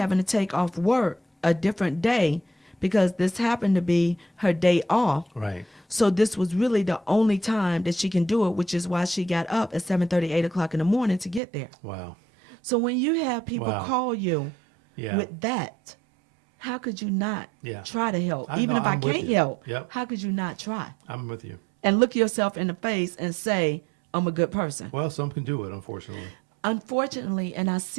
to take off work a different day because this happened to be her day off. Right. So this was really the only time that she can do it, which is why she got up at 7:30, 8 o'clock in the morning to get there. Wow. So when you have people Wow. call you Yeah. with that, how could you not Yeah. try to help? I Even know, if I I'm with can't you. help, Yep. how could you not try? I'm with you. And look yourself in the face and say, I'm a good person. Well, some can do it, unfortunately. Unfortunately, and I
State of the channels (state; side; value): drops out; left; at 11.4 s